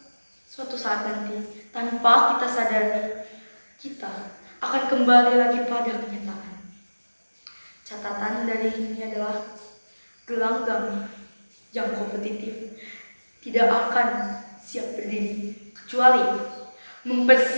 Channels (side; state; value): both; inverted; correlation -1.00